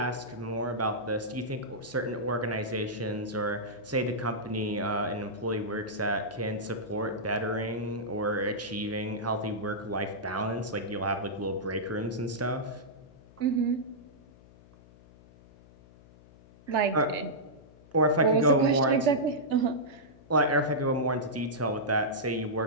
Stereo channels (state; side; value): noise; left; hum, 24 dB below the sound